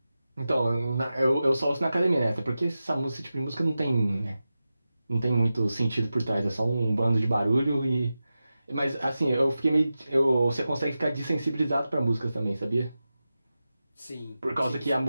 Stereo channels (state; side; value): inverted; both; correlation -0.93